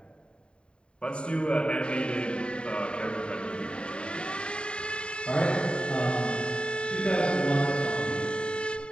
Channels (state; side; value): late; right; 0.053 ms